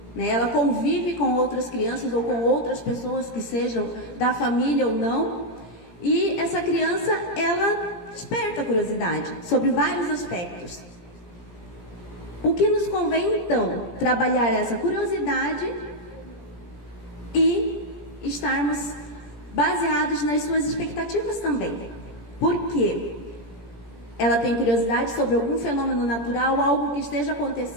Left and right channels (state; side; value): late; right; 17 ms